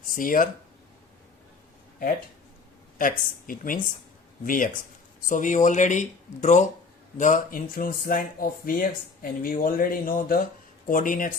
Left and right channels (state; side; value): quieter; right; 4.3 dB